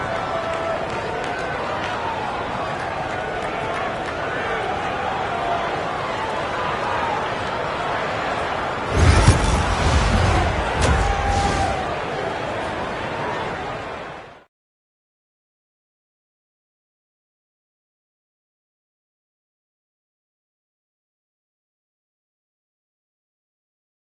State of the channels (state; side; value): identical; both; correlation 1.00